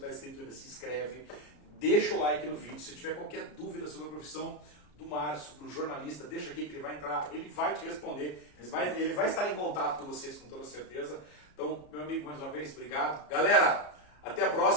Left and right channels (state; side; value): late; right; 33 ms